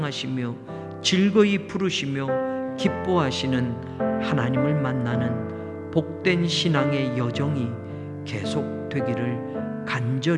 즐거이 부르시며 기뻐하시는 하나님을 만나는 복된 신앙의 여정이 계속되기를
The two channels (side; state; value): both; identical; correlation 1.00